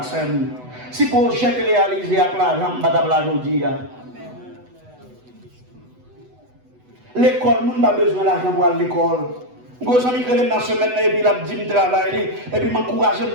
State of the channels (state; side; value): late; left; 8.0 ms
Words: Si le projet est réalisé avec l'argent, je ne vais pas aujourd'hui. L'école, nous n'avons pas besoin d'argent pour aller à l'école. Je suis allé dans la semaine et puis il dit que je travaille. Et puis je m'encourage à me